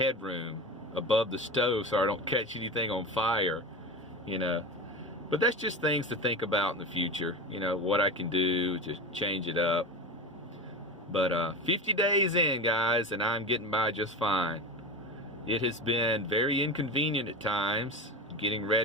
above the stove so I don't catch anything on fire, you know. But that's just things to think about in the future, you know, what I can do to change it up. But 50 days in, guys, and I'm getting by just fine. It has been very inconvenient at times, getting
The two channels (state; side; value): normal; both; correlation 0.26